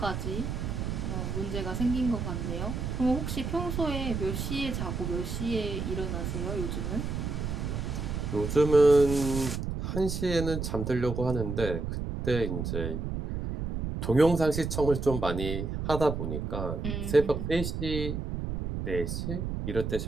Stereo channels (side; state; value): right; noise; rumble, 3 dB below the sound